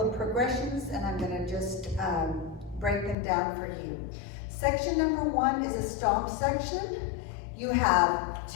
of progressions, and I'm going to just break them down for you. Section number 1 is a stomp section. You have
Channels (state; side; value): drops out; right; at 3.2 s